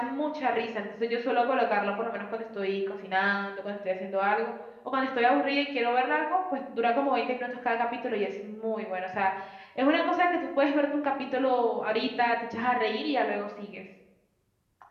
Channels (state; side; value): identical; both; correlation 1.00